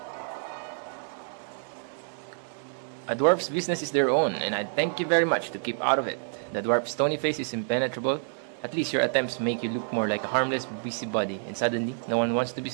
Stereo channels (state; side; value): silent; left; digital silence